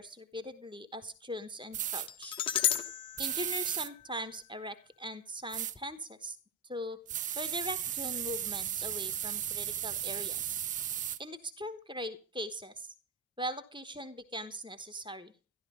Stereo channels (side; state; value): both; normal; correlation 0.08